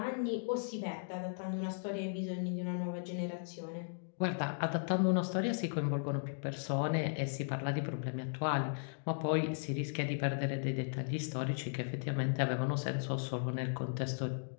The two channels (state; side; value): silent; right; digital silence